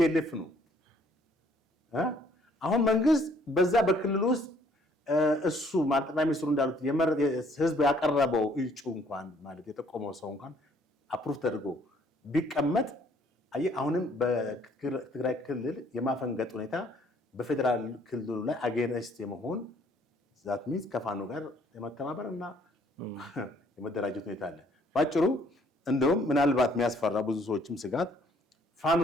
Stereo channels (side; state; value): both; normal; correlation 0.63